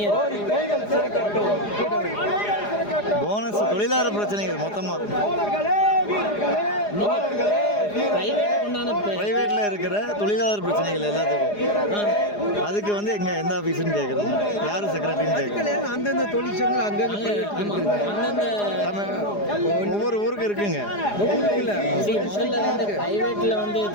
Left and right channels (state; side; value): late; right; 4.9 ms